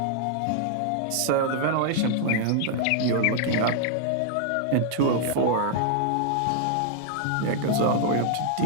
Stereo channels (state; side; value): different; both; correlation -0.01